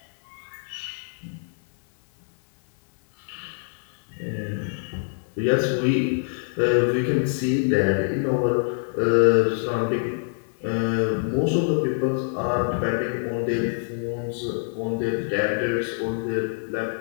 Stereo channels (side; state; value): right; silent; 58 dB below the other